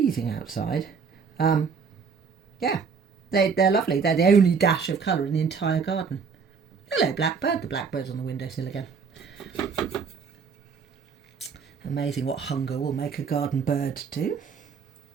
outside. Yeah, they're lovely. They're the only dash of colour in the entire garden. Hello, blackbird. The blackbird's on the windowsill again. Amazing what hunger will make a garden bird do.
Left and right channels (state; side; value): quieter; left; 5.8 dB